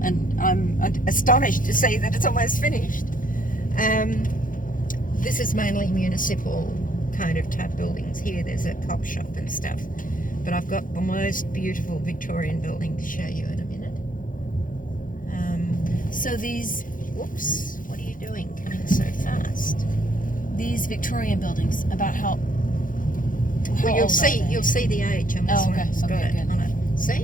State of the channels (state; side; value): late; right; 0.39 ms